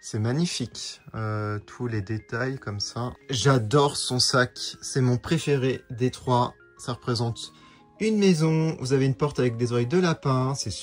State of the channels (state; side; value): identical; both; correlation 1.00